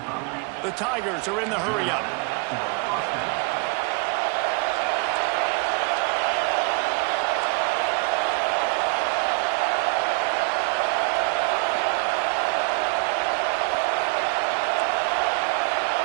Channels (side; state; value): left; quieter; 30.2 dB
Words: The Tigers are in the hurry-up.